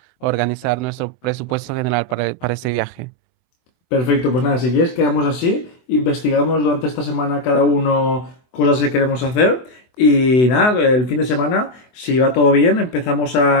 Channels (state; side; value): late; right; 24 ms